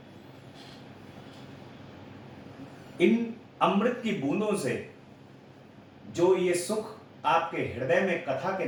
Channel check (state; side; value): identical; both; correlation 1.00